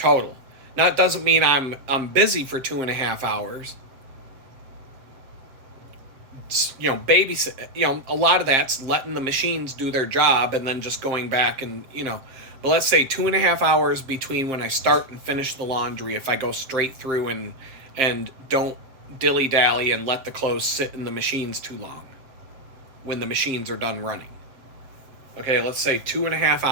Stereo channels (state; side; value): late; left; 7.6 ms